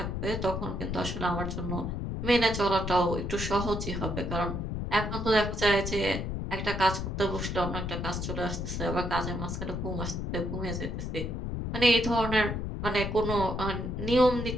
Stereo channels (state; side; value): noise; left; rumble, 3 dB below the sound